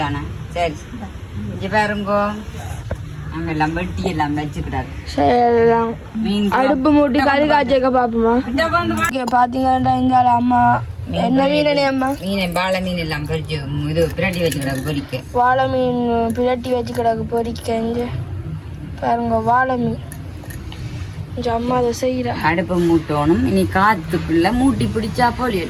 சரி இங்க பாருங்கோ நாங்க எல்லாம் வெட்டி எல்லாம் வச்சுக்கிடாது. சரி மீன் அடுப்பு மூட்டி கறி காய்ச்சக்க பாப்போமா. பாத்தீங்கன்னா இங்க அம்மா என்ன மீனே அம்மா மீன் வாழை மீன் எல்லாம் பொரிச்சு இது பிரட்டி வச்சுக்கிடாது பொரிக்க. வாழை மீன் பிரட்டி வச்சுக்கிடாது பொரிக்க. இங்க பாருங்க வாழை மீன் அம்மா அதை செய்யற. அடுப்பு மூட்டணும். இனி காத்துக்குள்ள மூட்டி பிடிச்சா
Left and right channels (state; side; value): identical; both; correlation 1.00